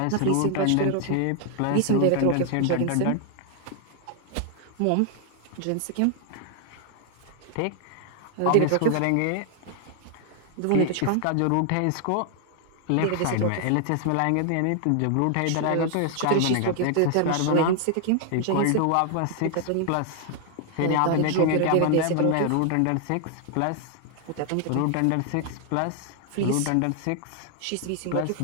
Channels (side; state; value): both; different; correlation 0.00